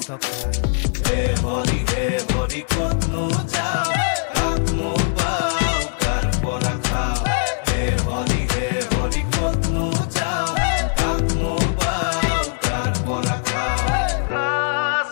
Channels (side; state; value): right; silent; 65 dB below the other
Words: টকা হে হৰি ক'তনো যাওঁ কাকনো পাওঁ কাৰ পৰা খাওঁ হে হৰি ক'তনো যাওঁ কাকনো পাওঁ কাৰ পৰা খাওঁ